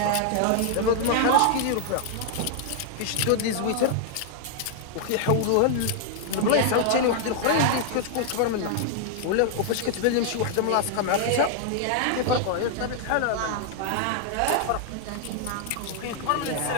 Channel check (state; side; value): different; both; correlation -0.01